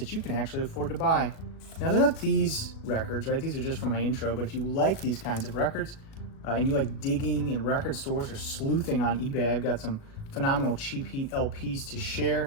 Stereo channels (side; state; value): right; late; 37 ms